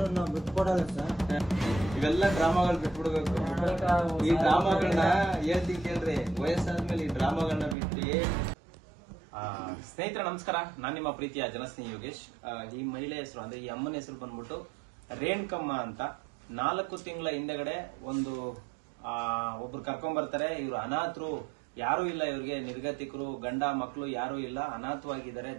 ನಾವು ಬಿಟ್ಕೊಡಲ್ಲ ಸರ್. ಇವೆಲ್ಲ ಡ್ರಾಮಾಗಳು ಬಿಟ್ಬಿಡ್ಬೇಕು. ಈ ಡ್ರಾಮಾಗಳನ್ನ ಹೇಳ್ತೀನಿ ಕೇಳ್ರಿ, ವಯಸ್ಸಾದ್ಮೇಲೆ ಈ ಡ್ರಾಮಾಗಳನ್ನ ಬಿಟ್ರಿ. ಸ್ನೇಹಿತರೆ ನಮಸ್ಕಾರ, ನಾನ್ ನಿಮ್ಮ ಪ್ರೀತಿಯ ಜನಸ್ನೇಹಿ ಯೋಗೇಶ್. ಈ ಮಹಿಳೆ ಹೆಸರು ಅಂದ್ರೆ ಈ ಅಮ್ಮನ ಹೆಸರು ಬಂದ್ಬಿಟ್ಟು ರೇಣುಕಮ್ಮ ಅಂತ. 4 ತಿಂಗಳ ಹಿಂದೆಗಡೆ ಒಬ್ರು ಕರ್ಕೊಂಡ್ ಬರ್ತಾರೆ. ಇವ್ರು ಅನಾಥರು, ಯಾರು ಇಲ್ಲ ಇವ್ರಿಗೆ, ನಿರ್ಗತಿಕರು, ಗಂಡ ಮಕ್ಕಳು ಯಾರು ಇಲ್ಲ, ಅನಾಥವಾಗಿದ್ದಾರೆ,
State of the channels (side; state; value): left; drops out; at 7.8 s